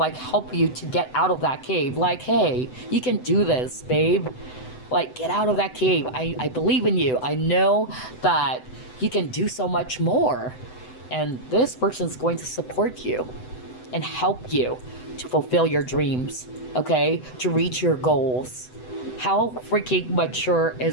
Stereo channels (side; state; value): right; late; 7.9 ms